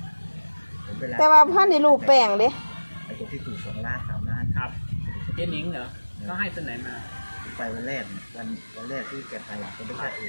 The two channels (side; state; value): both; inverted; correlation -1.00